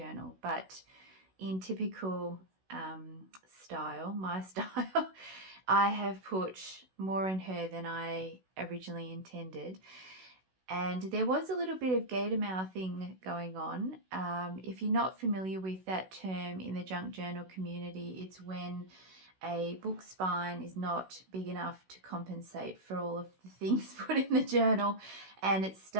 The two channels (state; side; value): late; left; 16 ms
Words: but in typical style, my style, I have put more in her than I originally intended. And there was a little bit of gator mouthing going on. If you're not familiar with that term in the junk journal community, it's when a book spine is not big enough to compensate for all of the things put in the journal, and it